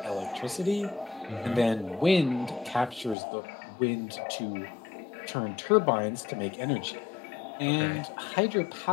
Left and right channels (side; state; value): right; drops out; at 3.2 s